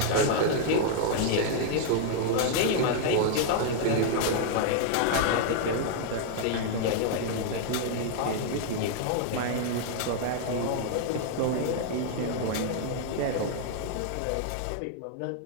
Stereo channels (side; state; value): both; different; correlation 0.00